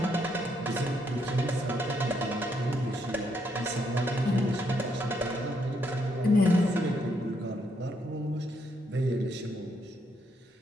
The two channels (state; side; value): normal; both; correlation 0.75